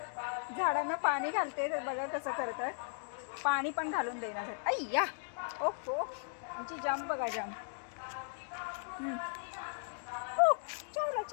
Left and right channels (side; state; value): right; silent; digital silence